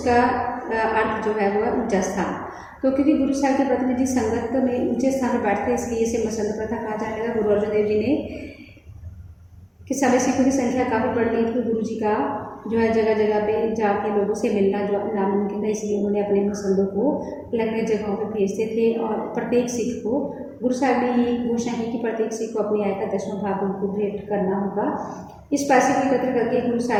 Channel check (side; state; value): both; identical; correlation 1.00